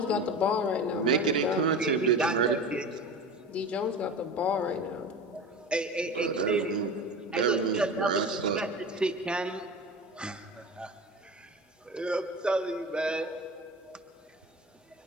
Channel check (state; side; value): normal; both; correlation 0.31